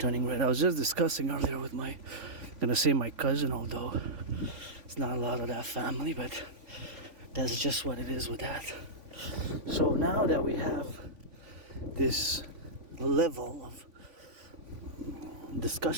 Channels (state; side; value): late; left; 3.5 ms